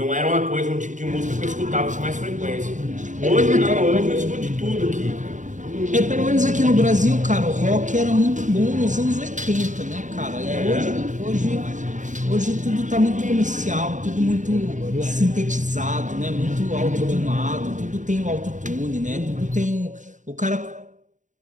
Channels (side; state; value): left; late; 0.36 ms